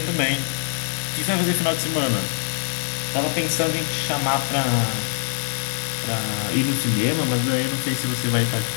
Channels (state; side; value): silent; right; digital silence